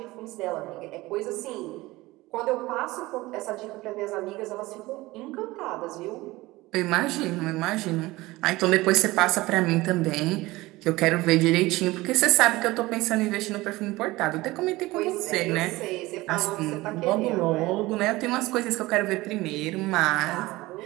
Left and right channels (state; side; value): quieter; left; 19.8 dB